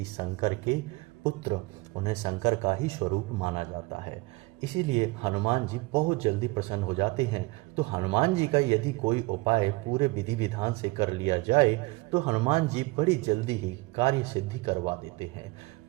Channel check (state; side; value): quieter; left; 23.4 dB